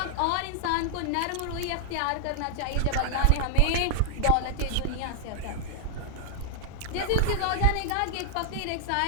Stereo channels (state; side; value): different; both; correlation -0.01